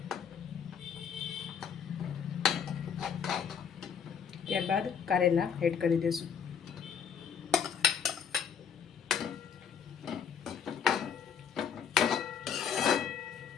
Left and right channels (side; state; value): right; quieter; 7.3 dB